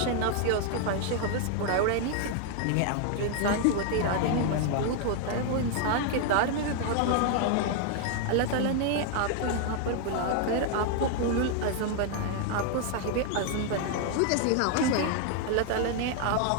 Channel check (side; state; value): both; different; correlation 0.00